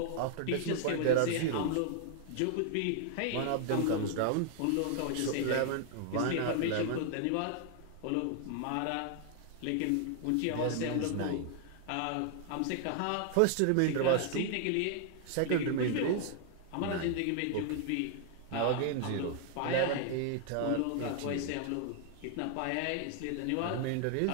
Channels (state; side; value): different; both; correlation 0.00